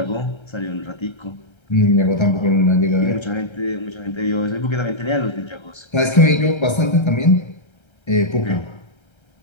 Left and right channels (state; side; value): late; right; 1.3 ms